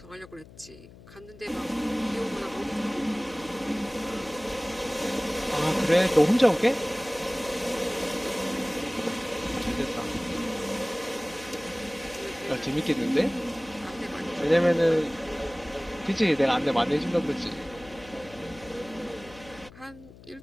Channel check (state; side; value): noise; left; hum, 20 dB below the sound